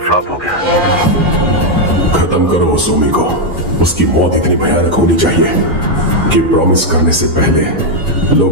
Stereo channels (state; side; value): normal; both; correlation 0.01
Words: फ्लॉप हो गया। खत्म करो उस ओमी को। उसकी मौत इतनी भयानक होनी चाहिए कि प्रॉमिस करने से पहले